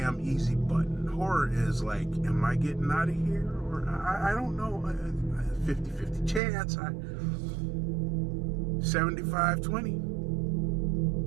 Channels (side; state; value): left; drops out; at 6.4 s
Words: easy button. Horror is like, am I getting out of here? Or I don't know. 50-50 chance.